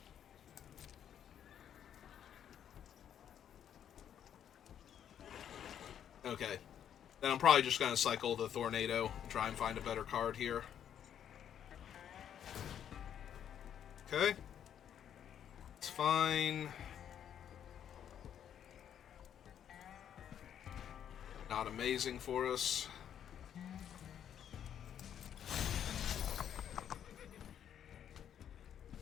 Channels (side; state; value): right; quieter; 9.4 dB